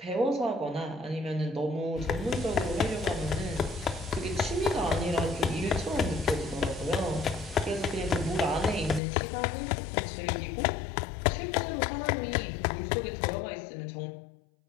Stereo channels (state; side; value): drops out; right; at 9.0 s